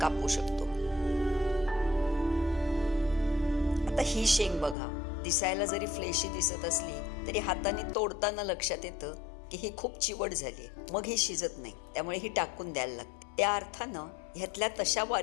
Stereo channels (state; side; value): drops out; right; at 4.8 s